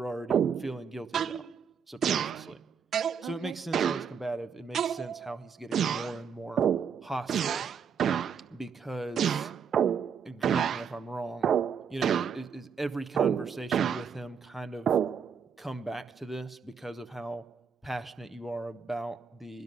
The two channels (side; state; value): left; quieter; 6.8 dB